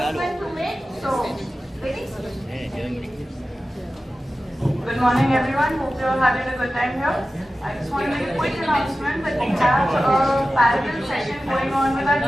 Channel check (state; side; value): normal; both; correlation 0.94